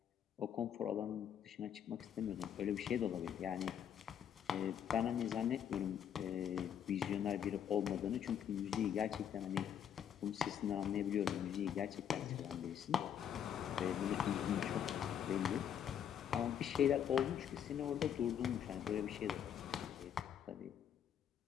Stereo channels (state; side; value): quieter; right; 9.0 dB